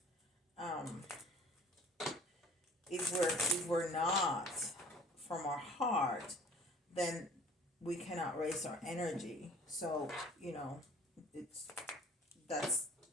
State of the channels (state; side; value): normal; both; correlation 0.51